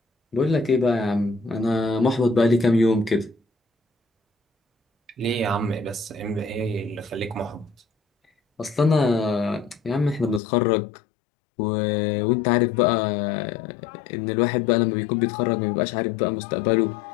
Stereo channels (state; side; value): drops out; right; at 10.4 s